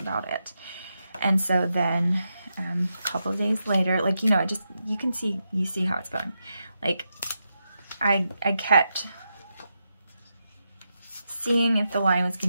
it. And so then a couple of days later, like, you know, you see how it's going. Like, I kept seeing if the line was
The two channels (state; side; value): inverted; both; correlation -0.86